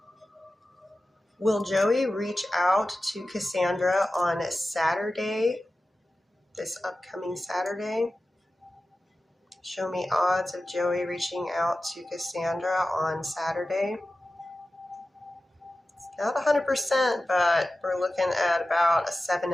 Will Joey reach out to Cassandra on Saturday, this upcoming Saturday? Show me odds of Joey reaching out to Cassandra on Saturday. It's not 100%, but we're looking at about a 7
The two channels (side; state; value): both; normal; correlation 0.95